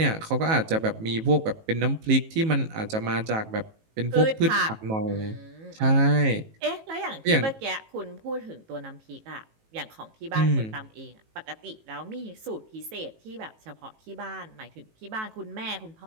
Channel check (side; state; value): left; late; 18 ms